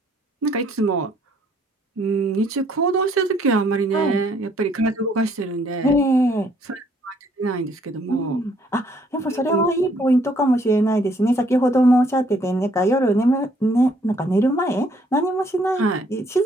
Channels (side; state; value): both; normal; correlation 0.66